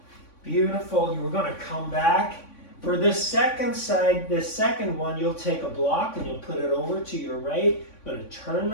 Beautiful. We're going to come back. For this second side, this second one, you'll take a block and you'll put it over to your right. I'm going to turn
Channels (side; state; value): right; late; 3.5 ms